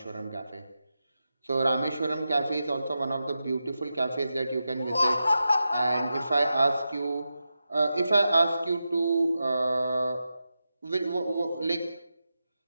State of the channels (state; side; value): inverted; both; correlation -0.90